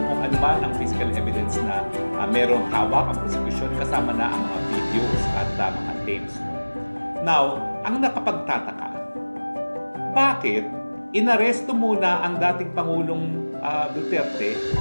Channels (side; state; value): both; inverted; correlation -1.00